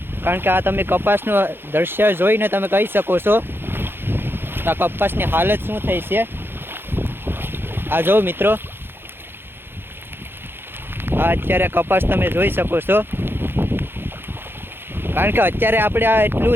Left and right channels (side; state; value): left; late; 0.10 ms